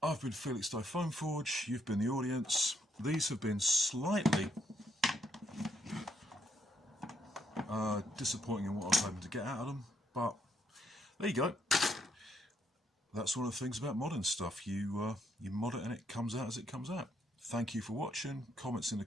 I've been Felix Foam Forge, you've been the audience. These have been slightly disappointing in what I was hoping to get out of them, but there you go. That's one of the things about modern stuff. You mod it and it comes out as it comes out. Thank you for watching. Comments in the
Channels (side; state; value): both; normal; correlation 0.74